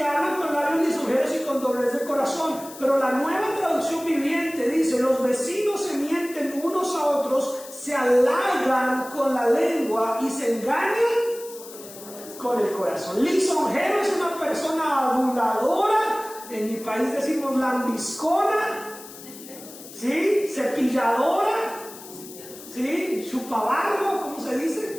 hablan con labios lisonjeros y con doblez de corazón. Pero la Nueva Traducción Viviente dice, los vecinos se mienten unos a otros, se halagan con la lengua y se engañan con el corazón. Lisonjero es una persona aduladora. En mi país decimos lambiscona, ¿sí? Cepilladora, ¿sí? Chupabarro, ¿cómo se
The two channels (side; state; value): left; noise; hiss, 16 dB below the sound